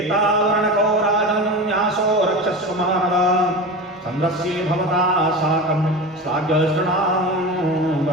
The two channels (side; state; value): both; normal; correlation 0.29